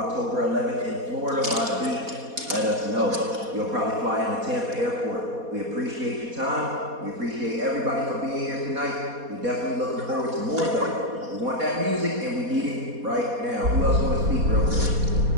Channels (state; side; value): late; left; 4.2 ms